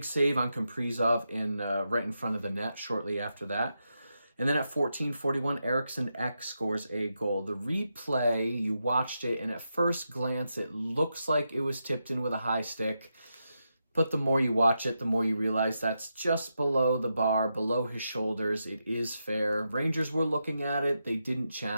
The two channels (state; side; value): inverted; both; correlation -0.86